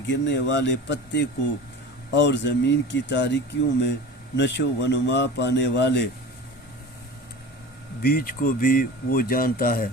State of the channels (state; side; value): normal; both; correlation 0.36